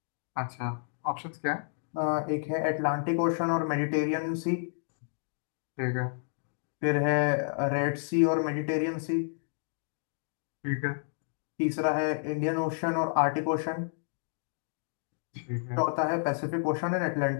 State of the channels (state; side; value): silent; right; digital silence